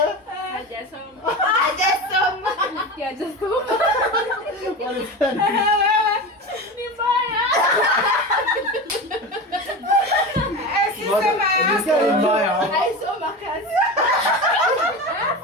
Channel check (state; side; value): normal; both; correlation 0.26